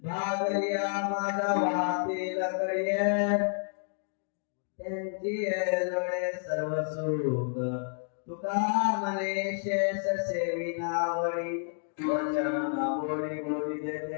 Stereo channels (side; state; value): right; silent; digital silence